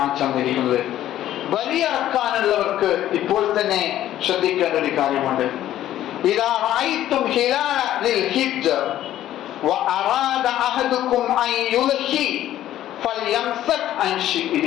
തന്നിരിക്കുന്നത്. ബലിയറക്കാനുള്ളവർക്ക് ഇപ്പോൾ തന്നെ ശ്രദ്ധിക്കേണ്ട ഒരു കാര്യമുണ്ട്. ഇദാ റഅയ്തും ഹിലാല ലിൽ ഹിജ്ജ വഅറാദ അഹദുകും അൻ യുൽഹി ഫൽയംസക് അൻ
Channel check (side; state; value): right; quieter; 12.7 dB